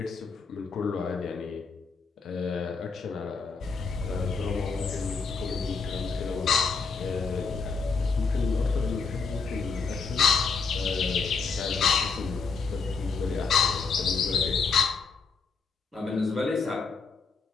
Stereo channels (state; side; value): quieter; right; 5.0 dB